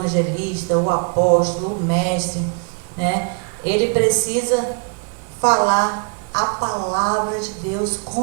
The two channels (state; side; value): quieter; left; 39.0 dB